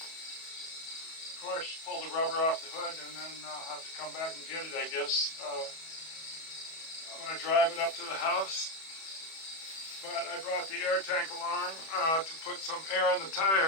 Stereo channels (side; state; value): right; late; 31 ms